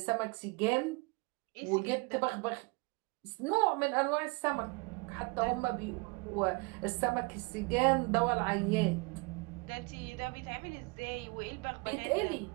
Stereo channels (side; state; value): left; quieter; 28.9 dB